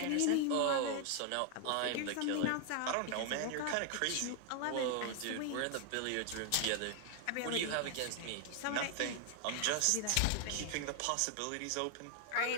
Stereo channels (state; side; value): different; both; correlation 0.00